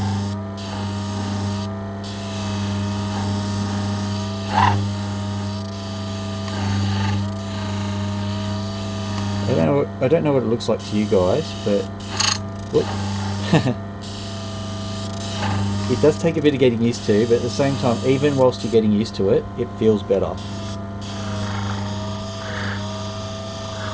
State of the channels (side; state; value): both; identical; correlation 1.00